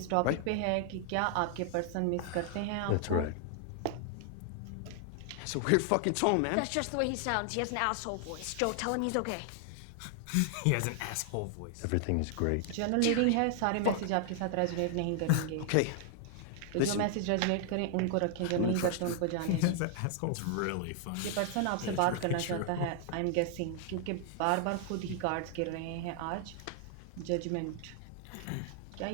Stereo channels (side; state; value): both; different; correlation 0.00